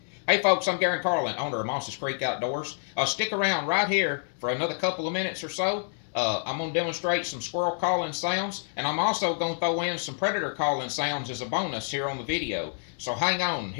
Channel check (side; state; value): right; silent; 59 dB below the other